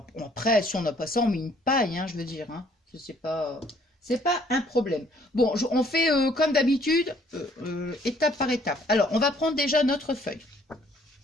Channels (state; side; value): normal; both; correlation 0.62